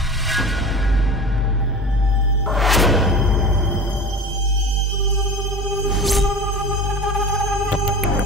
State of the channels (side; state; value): both; normal; correlation 0.34